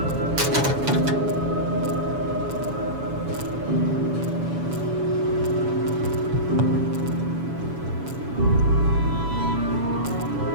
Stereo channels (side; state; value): left; late; 7.1 ms